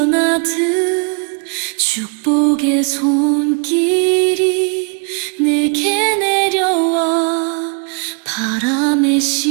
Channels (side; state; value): left; quieter; 38.8 dB